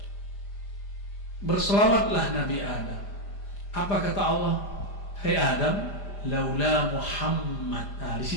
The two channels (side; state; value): right; late; 5.0 ms